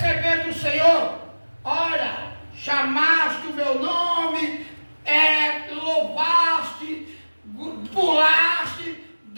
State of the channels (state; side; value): inverted; both; correlation -1.00